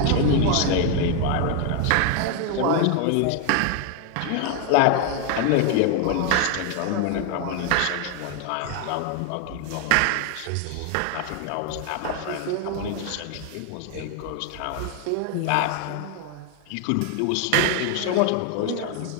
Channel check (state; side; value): different; both; correlation 0.01